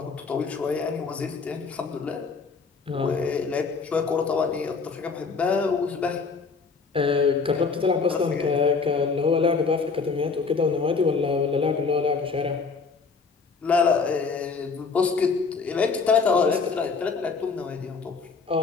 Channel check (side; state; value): right; quieter; 4.8 dB